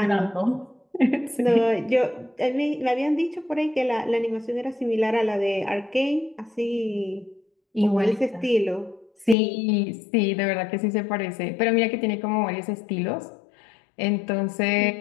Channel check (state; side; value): drops out; right; at 9.3 s